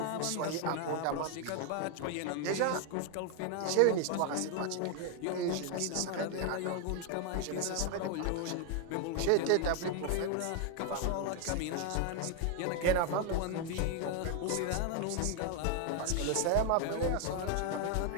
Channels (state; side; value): different; both; correlation 0.00